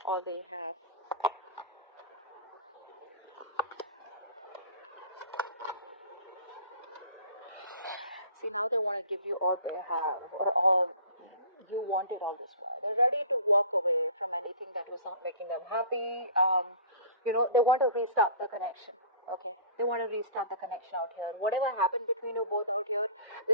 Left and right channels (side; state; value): both; inverted; correlation -0.43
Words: all they have. See, now they want to give you all they have, or all you wanted all this while. They're ready to walk away from anything that was not making them happy. They want to restart the connection. Okay, they want to restart the connection out here. Whatever happened between you both out here,